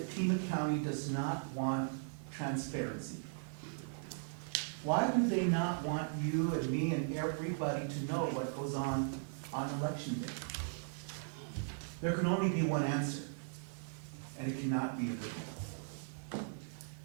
Pima County does not want transparency? Why do they not want you and me and everybody to know what goes on election day? There can only be one answer, and it cannot be illegal.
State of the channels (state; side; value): silent; left; digital silence